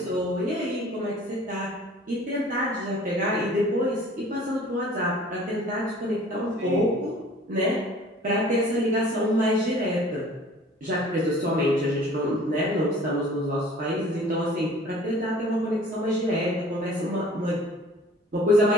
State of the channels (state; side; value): normal; both; correlation 0.49